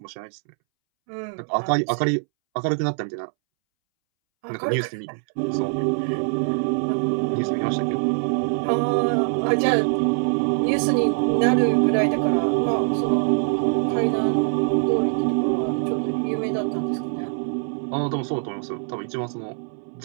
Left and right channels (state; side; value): silent; left; 63 dB below the other